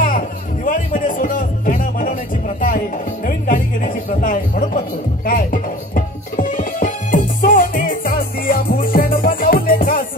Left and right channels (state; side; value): normal; both; correlation 0.43